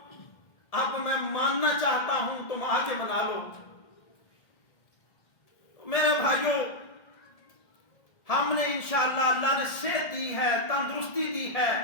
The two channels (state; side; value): late; right; 1.7 ms